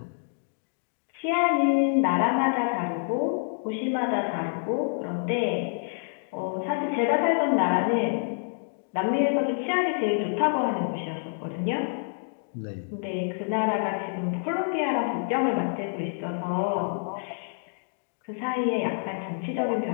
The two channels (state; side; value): silent; right; digital silence